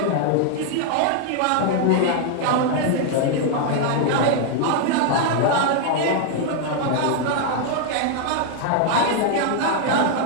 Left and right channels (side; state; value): both; different; correlation 0.00